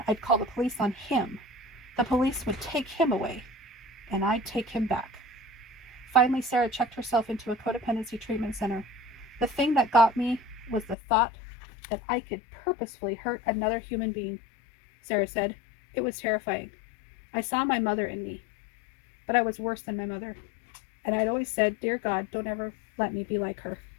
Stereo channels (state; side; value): drops out; right; at 11.0 s